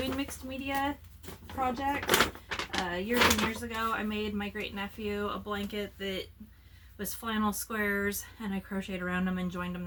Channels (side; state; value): both; identical; correlation 1.00